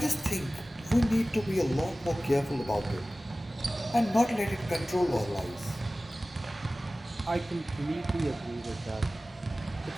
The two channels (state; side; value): normal; both; correlation 0.97